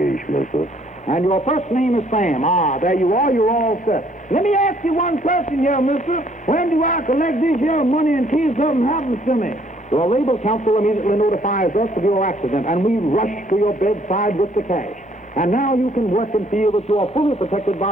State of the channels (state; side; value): noise; left; hum, 29 dB below the sound